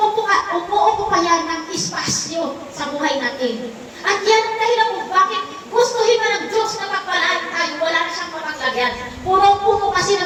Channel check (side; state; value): both; identical; correlation 1.00